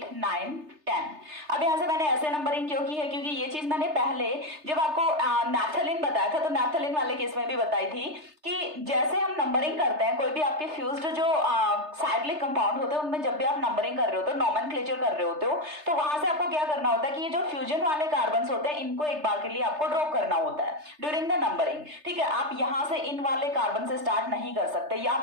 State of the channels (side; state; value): left; late; 3.3 ms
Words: 9, 10. अब यहाँ से मैंने ऐसे नंबरिंग क्यों की है, क्योंकि ये चीज मैंने पहले जब आपको नैफ्थलीन बताया था तो नैफ्थलीन वाले केस में भी बताई थी कि जैसे हम नंबरिंग करते हैं कोई भी आपके फ्यूज्ड जो साइक्लिक कंपाउंड होते हैं उनमें जब भी आप नंबरिंग कर रहे होते हो, नोमेनक्लेचर कर रहे होते हो, तो वहां से आपको क्या करना होता है कि ये जो फ्यूजन वाले कार्बन होते हैं इनको एक बार के लिए आपको ड्रॉप करना होता है ड्यूरिंग द नंबरिंग. ठीक है, आप यहाँ से इन वाले कार्बन से स्टार्ट नहीं कर सकते, या